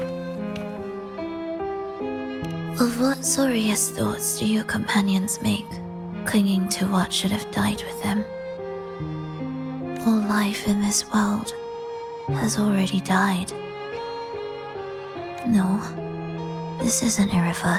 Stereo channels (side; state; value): both; identical; correlation 1.00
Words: Of what sorriest thoughts do your companions make, clinging to what should have died with them? All life in this world has already died. No, this isn't